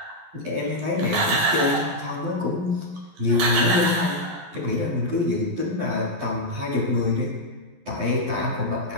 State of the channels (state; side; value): late; left; 11 ms